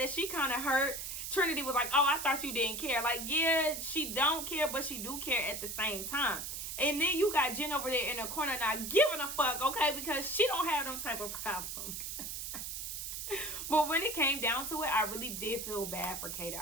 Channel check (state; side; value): noise; right; hiss, 5 dB below the sound